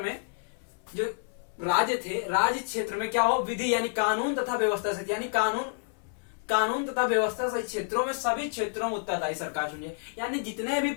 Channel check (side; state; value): right; silent; 58 dB below the other